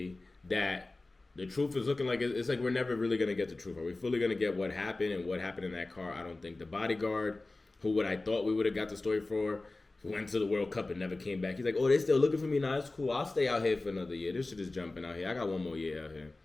that the truth is looking like it's like we're never really going to get the truth. Are we fully going to get what happened and what happened in that car? I don't think. The bodyguard, who I thought we would have got the story for, who went to the World Cup and never came back. He's like, oh, they still looking for me? Nah, it's cool. I'll stay out here for another year. This shit is jumping out here. I got one more year out here.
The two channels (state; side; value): quieter; right; 3.1 dB